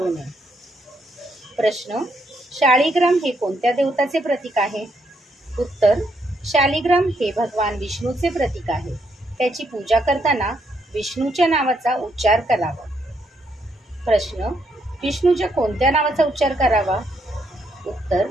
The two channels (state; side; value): normal; both; correlation 0.75